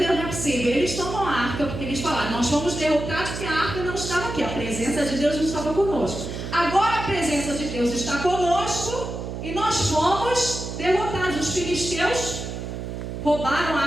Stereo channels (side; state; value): right; noise; hum, 6 dB below the sound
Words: não é possível. Eles tomam a arca, porque eles falaram, nós fomos derrotados porque a arca não estava aqui. A presença de Deus não estava conosco. Agora a presença de Deus está conosco e nós fomos derrotados. Os filisteus roubaram a